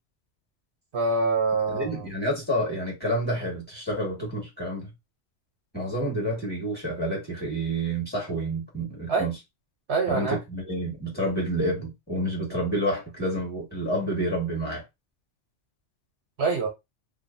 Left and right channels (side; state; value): both; normal; correlation -0.11